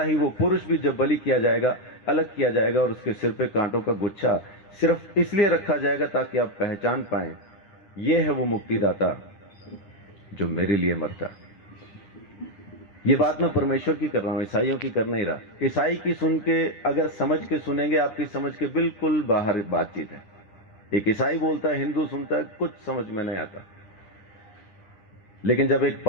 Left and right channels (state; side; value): late; right; 10 ms